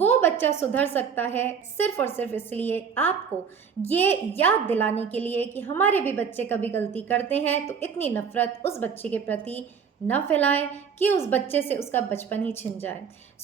बच्चा सुधर सकता है सिर्फ और सिर्फ इसलिए, आपको ये याद दिलाने के लिए कि हमारे भी बच्चे कभी गलती करते हैं, तो इतनी नफरत उस बच्चे के प्रति न फैलाएं कि उस बच्चे से उसका बचपन ही छिन जाए।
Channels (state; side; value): quieter; left; 6.7 dB